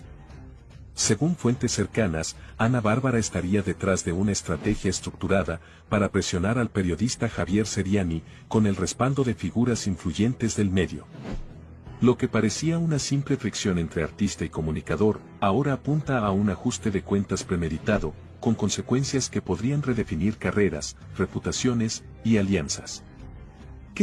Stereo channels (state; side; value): identical; both; correlation 1.00